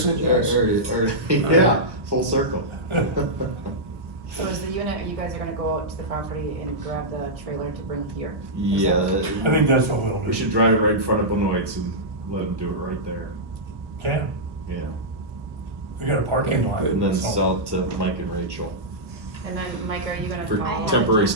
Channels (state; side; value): late; left; 1.1 ms